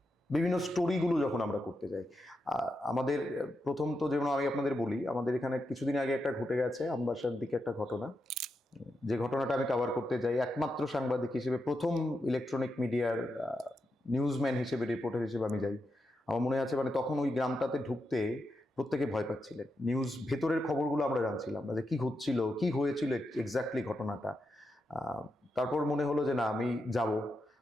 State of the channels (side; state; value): both; normal; correlation 0.86